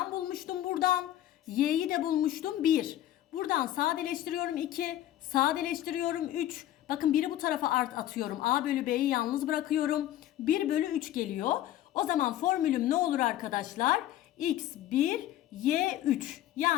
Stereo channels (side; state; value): right; quieter; 13.0 dB